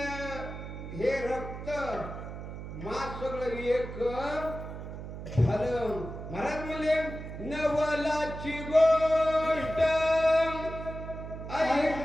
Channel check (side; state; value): right; noise; hum, 9 dB below the sound